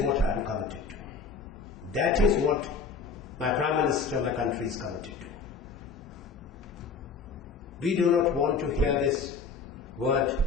I am committed to. That is what my Prime Minister, my country is committed to. We do not want to hear this word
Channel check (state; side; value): quieter; right; 4.9 dB